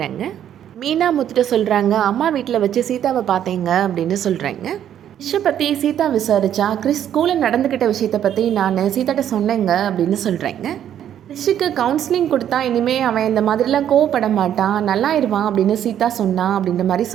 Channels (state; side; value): quieter; left; 10.3 dB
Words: மீனா முத்துட்ட சொல்கிறாங்க, அம்மா வீட்டில் வச்சு சீதாவை பார்த்தேங்க அப்படின்னு சொல்கிறாங்க. கிறிஷை பற்றி சீதா விசாரிச்சா கிறிஸ் ஸ்கூலில் நடந்துக்கிட்ட விஷயத்தை பற்றி நான் சீதாட்ட சொன்னேங்க அப்படின்னு சொல்கிறாங்க. கிறிஷுக்கு கவுன்சிலிங் கொடுத்தா இனிமேல் அவன் இந்த மாதிரிலாம் கோவப்பட மாட்டான், நல்லாயிருவான் அப்படின்னு சீதா சொன்னான் அப்படின்ற மாதிரி